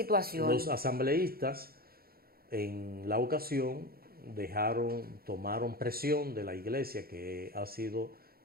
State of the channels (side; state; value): left; late; 0.44 ms